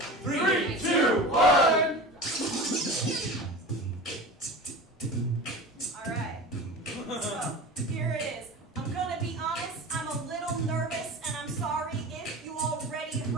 2, 1! Alright. So, here it is. I'm gonna be honest, I'm a little nervous, and I'm sorry if you already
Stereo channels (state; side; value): normal; both; correlation 0.33